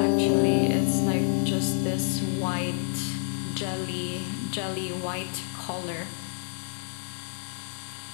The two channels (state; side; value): silent; right; digital silence